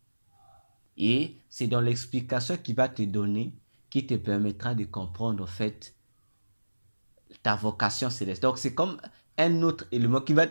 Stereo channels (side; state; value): both; inverted; correlation -1.00